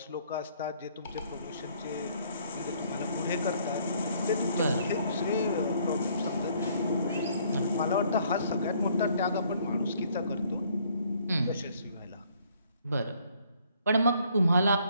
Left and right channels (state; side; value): inverted; both; correlation -0.64